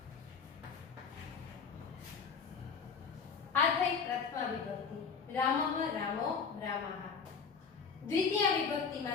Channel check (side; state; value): right; quieter; 5.8 dB